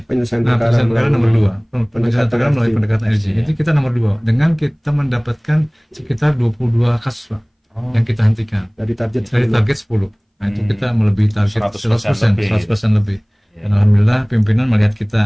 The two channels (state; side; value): identical; both; correlation 1.00